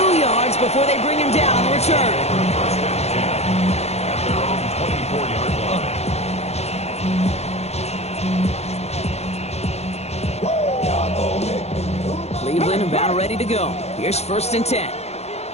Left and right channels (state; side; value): late; right; 0.31 ms